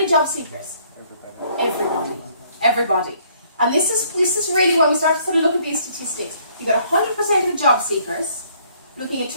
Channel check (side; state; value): both; inverted; correlation -0.63